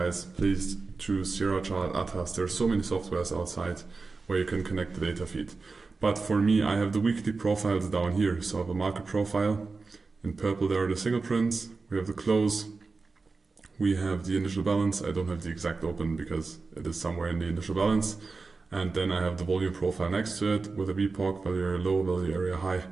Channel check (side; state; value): left; quieter; 4.1 dB